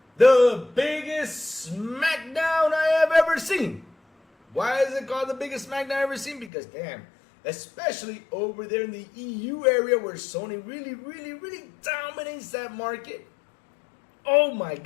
the biggest SmackDown I have ever seen. Why is it called the biggest SmackDown I've ever seen? Because damn, especially over there in the EU area where Sony really dominates that market. Oh my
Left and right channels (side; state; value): right; drops out; at 6.5 s